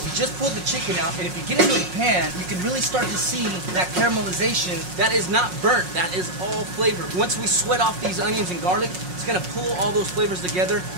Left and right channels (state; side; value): late; left; 5.5 ms